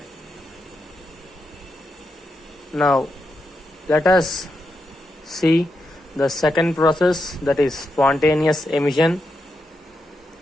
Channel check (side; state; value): both; normal; correlation 0.85